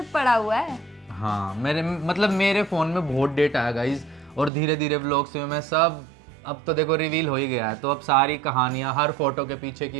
पड़ा हुआ है। हाँ मेरे मतलब मेरे फ़ोन में बहुत डेटा है गाइज, और धीरे धीरे व्लॉग्स में मैं सब, अब तो देखो रिवील हो ही गया है, तो अब सारी कहानियाँ, हर फोटो के पीछे की,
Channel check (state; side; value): drops out; left; at 4.5 s